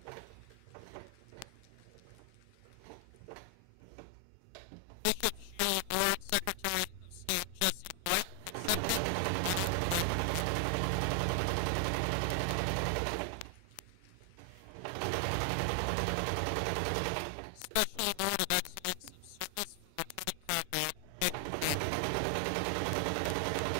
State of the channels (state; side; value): different; both; correlation 0.00